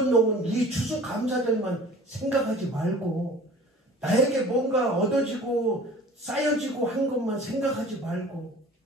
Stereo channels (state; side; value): normal; both; correlation 0.45